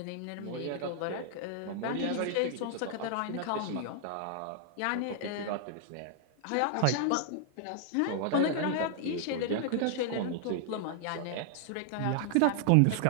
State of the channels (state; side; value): different; both; correlation 0.00